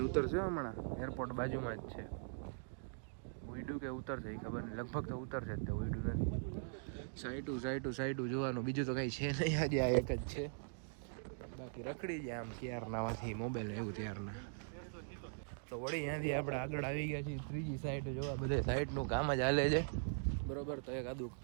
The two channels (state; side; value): silent; left; digital silence